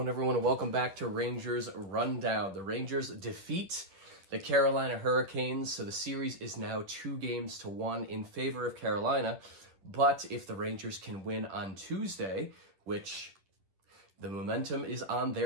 everyone? And welcome back to Rangers Rundown. The Rangers defeat the Carolina Hurricanes, so the series is now 2-1 in favor of Carolina. But if the Rangers can win on Tuesday, which the momentum is on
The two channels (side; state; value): left; late; 10 ms